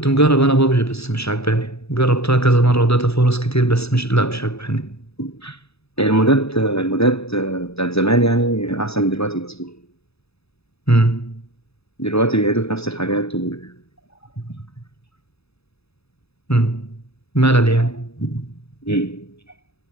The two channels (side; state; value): right; late; 0.78 ms